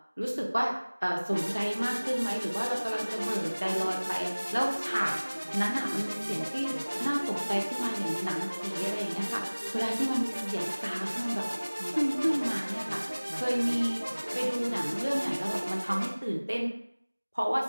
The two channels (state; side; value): inverted; both; correlation -1.00